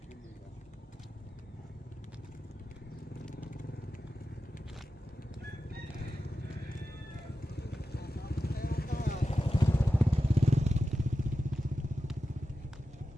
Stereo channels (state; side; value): normal; both; correlation 0.92